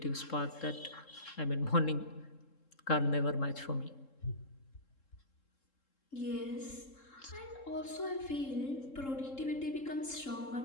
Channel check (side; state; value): right; late; 3.7 ms